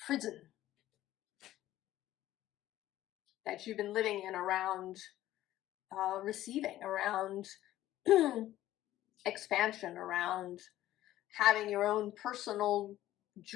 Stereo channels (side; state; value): right; quieter; 14.1 dB